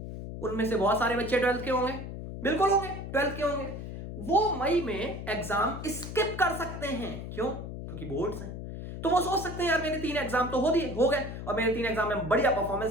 उनमें से बहुत सारे बच्चे 12th के होंगे, बिल्कुल होंगे 12th के होंगे। वो मई में एग्जाम स्किप कर सकते हैं। क्यों? क्योंकि बोर्ड्स हैं। तो वो सोच सकते हैं यार मेरे 3 एग्जाम तो हो गए, और मेरे 3 एग्जाम में बढ़िया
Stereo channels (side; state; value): left; noise; hum, 8 dB below the sound